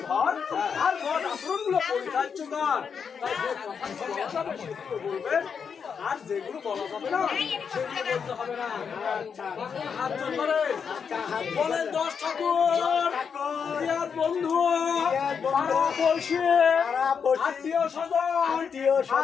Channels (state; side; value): quieter; right; 6.5 dB